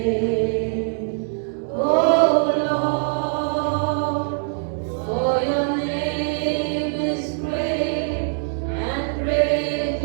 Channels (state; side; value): silent; left; 64 dB below the other